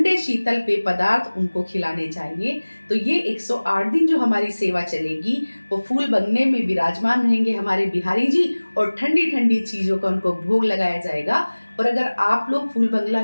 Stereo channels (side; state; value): both; inverted; correlation -1.00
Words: शीतल पेय पदार्थ उनको खिलाने चाहिए। तो ये 108 दिन जो हमारी सेवा चलेगी, वो फूल बंगले में विराजमान रहेंगे हमारे बिहारी जी, और ठंडी ठंडी चीज़ों का उनको भोग लगाया जाएगा। और अगर आप लोग फूल बंगला